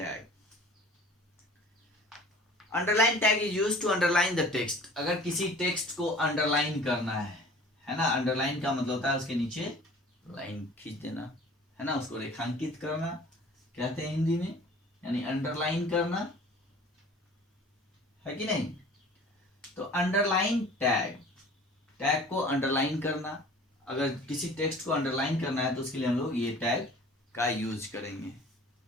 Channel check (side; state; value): both; normal; correlation 0.47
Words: Underline tag is used to underline the text. अगर किसी टेक्स्ट को अंडरलाइन करना है ना, अंडरलाइन का मतलब होता है उसके नीचे लाइन खींच देना, है ना, उसको रेखांकित करना कहते हैं हिंदी में, यानी अंडरलाइन करना, है कि नहीं। तो अंडरलाइन टैग, टैग को अंडरलाइन करना, अगर किसी टेक्स्ट को अंडरलाइन करना है तो उसके लिए हम लोग ये टैग का यूज करेंगे,